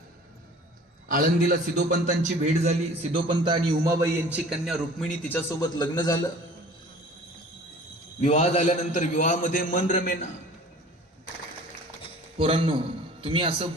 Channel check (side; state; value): both; normal; correlation 0.46